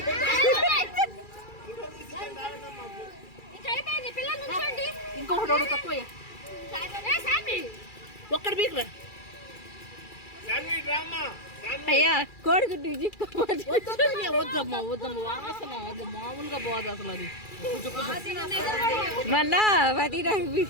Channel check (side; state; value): right; late; 2.3 ms